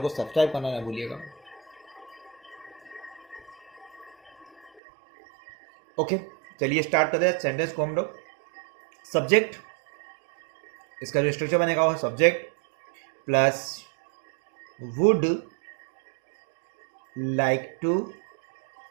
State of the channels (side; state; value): left; drops out; at 4.8 s